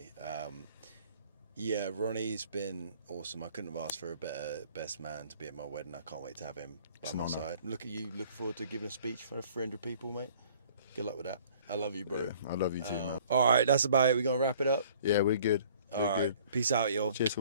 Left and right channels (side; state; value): both; inverted; correlation -0.55